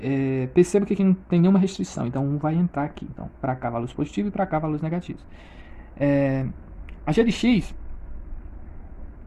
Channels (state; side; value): identical; both; correlation 1.00